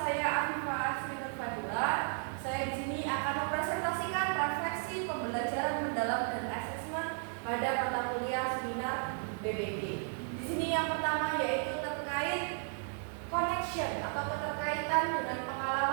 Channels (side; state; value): left; silent; 55 dB below the other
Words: Afifah Asrinur Fadila. Saya di sini akan mempresentasikan refleksi pembelajaran mendalam dan asesmen pada mata kuliah seminar BPB. Di sini yang pertama yaitu terkait connection atau keterkaitan dengan